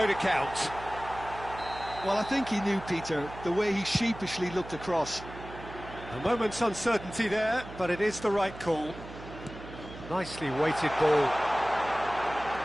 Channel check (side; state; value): right; noise; hum, 14 dB below the sound